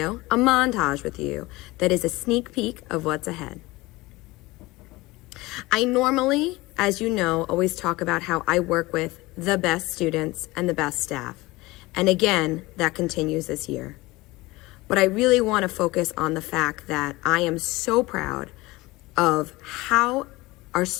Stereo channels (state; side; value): quieter; right; 20.9 dB